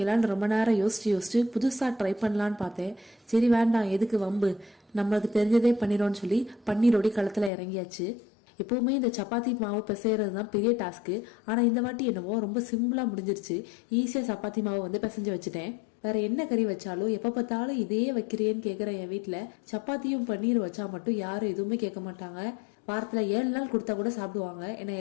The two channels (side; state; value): right; drops out; at 7.5 s